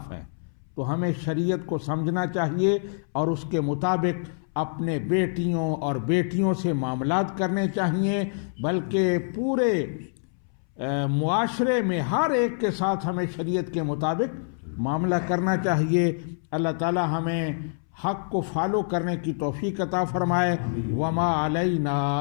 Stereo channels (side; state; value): right; silent; 61 dB below the other